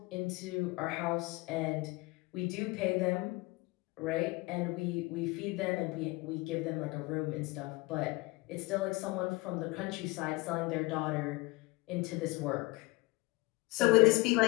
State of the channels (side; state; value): right; quieter; 23.1 dB